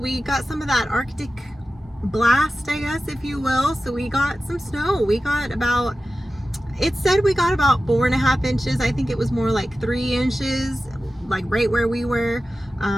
got some of that Arctic blast, I guess, if you will. So we got some snow. It said we got about 4.5 inches. I think it was more like 3 inches, like right where we were.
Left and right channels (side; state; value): both; normal; correlation 0.94